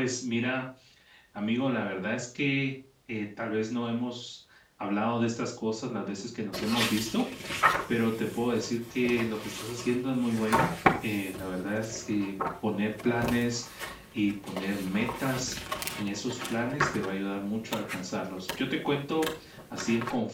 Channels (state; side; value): identical; both; correlation 1.00